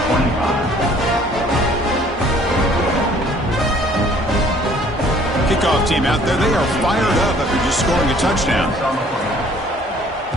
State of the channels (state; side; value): normal; both; correlation 0.57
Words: Kickoff team out there, they are fired up after just scoring a touchdown.